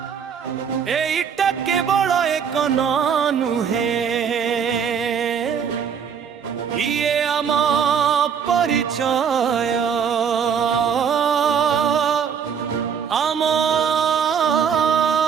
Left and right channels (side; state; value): left; quieter; 7.3 dB